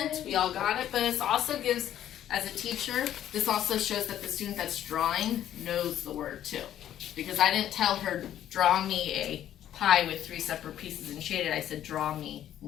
We all got it. But this also gives, as a teacher, this also shows that the student that's drawing knows the word too. Because I didn't tell her, draw me a pie with 3 separate pieces and shade it. I said, draw me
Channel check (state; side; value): quieter; right; 11.3 dB